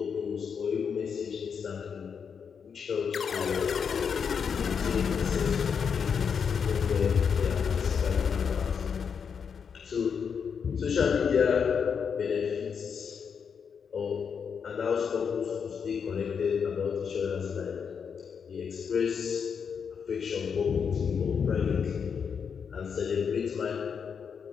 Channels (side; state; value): right; quieter; 6.6 dB